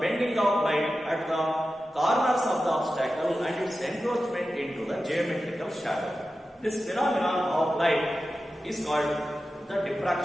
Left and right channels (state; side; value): normal; both; correlation 0.93